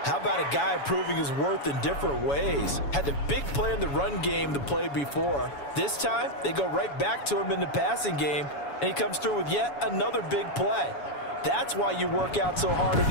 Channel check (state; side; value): late; right; 7.1 ms